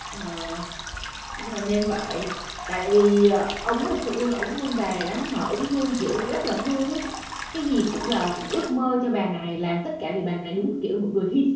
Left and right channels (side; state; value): both; identical; correlation 1.00